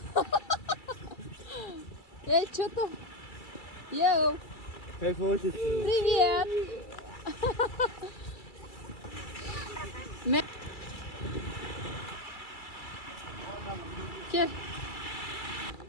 Эй, что там? Йоу, Кайфовать. привет! Кел.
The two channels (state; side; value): late; right; 2.3 ms